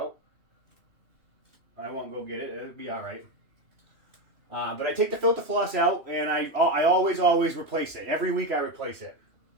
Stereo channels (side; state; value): left; late; 2.8 ms